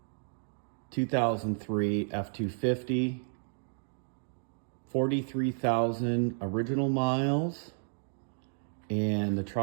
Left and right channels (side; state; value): left; silent; digital silence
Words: 2003 F250, 43,000 original miles, and the